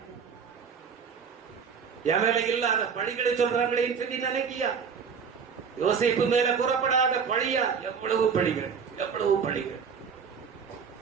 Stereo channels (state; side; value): quieter; left; 6.4 dB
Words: என் மேல இல்லாத பழிகளை சொல்றாங்களே சொல்லி நினைக்கியா? யோசேப்பு மேல கூறப்படாத பழியா? எவ்வளவு பழிகள், எவ்வளவு பழிகள்.